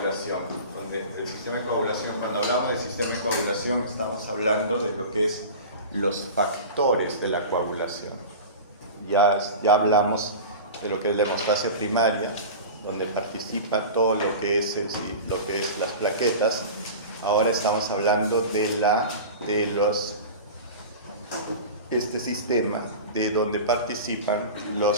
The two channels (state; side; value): inverted; both; correlation -0.32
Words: El sistema de coagulación, cuando hablamos del sistema de coagulación, estamos hablando de lo que es los factores de la coagulación. Ya hablamos de lo que es la hemostasia primaria, donde participa todo lo que es las plaquetas. Ahora estamos hablando de este sistema de donde participan